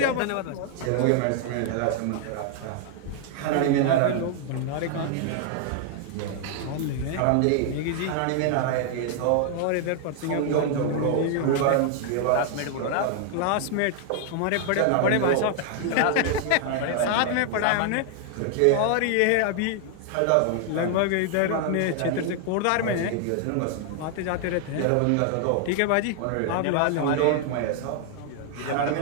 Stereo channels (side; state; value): both; different; correlation 0.00